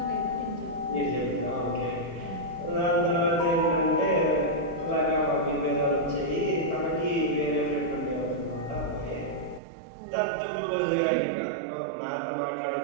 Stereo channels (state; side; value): drops out; left; at 9.6 s